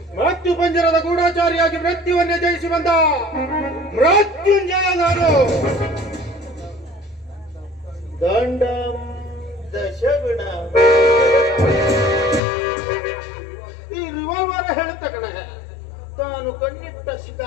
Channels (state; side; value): drops out; right; at 12.4 s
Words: ಮೃತ್ಯು ಪಂಜರದ ಗೂಢಾಚಾರಿಯಾಗಿ ಮೃತ್ಯುವನ್ನೇ ಜಯಿಸಿ ಬಂದ ಮೃತ್ಯುಂಜಯ ನಾನು. ದಂಡಂ ದಶಗುಣ. ಈ ರಿವಾಲ್ವರ್ ಹೇಳುತ್ತ ಕಣ, ತಾನು ಕಣ್ಣಿಟ್ಟ